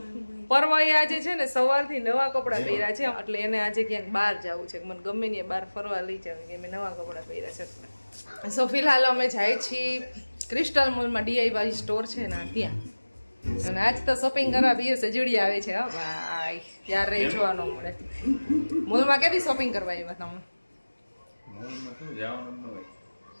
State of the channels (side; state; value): both; inverted; correlation -1.00